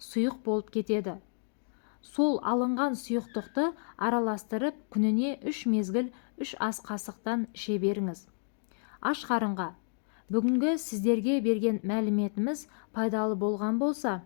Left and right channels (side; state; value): right; silent; 57 dB below the other